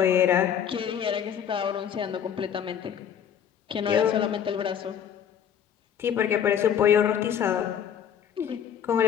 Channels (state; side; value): quieter; right; 8.7 dB